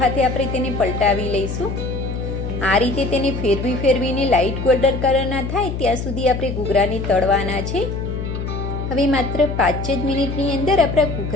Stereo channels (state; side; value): noise; left; hum, 4 dB below the sound